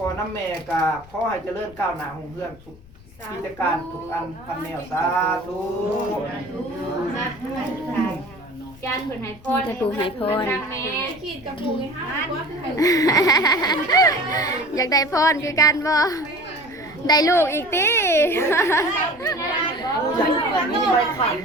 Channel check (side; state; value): left; noise; rumble, 23 dB below the sound